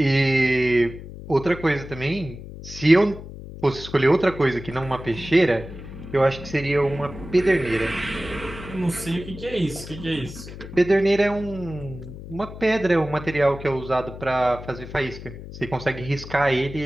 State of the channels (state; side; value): noise; left; hum, 13 dB below the sound